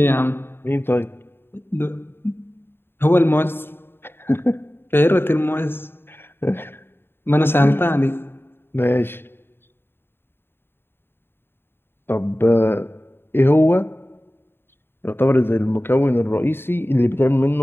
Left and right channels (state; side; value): late; right; 0.11 ms